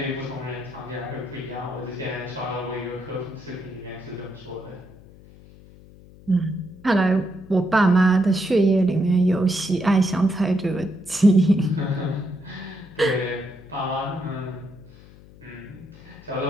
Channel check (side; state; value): left; noise; hum, 22 dB below the sound